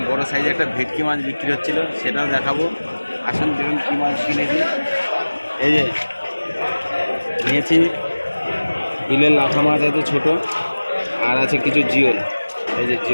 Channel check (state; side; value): inverted; both; correlation -1.00